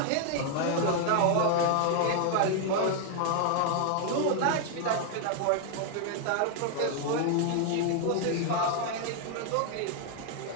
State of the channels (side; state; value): both; different; correlation 0.00